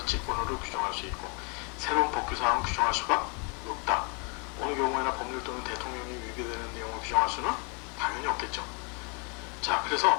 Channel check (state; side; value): quieter; right; 34.5 dB